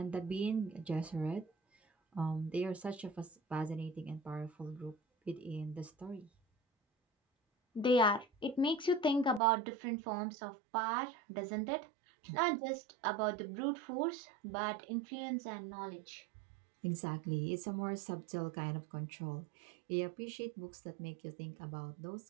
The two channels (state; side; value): drops out; left; at 9.4 s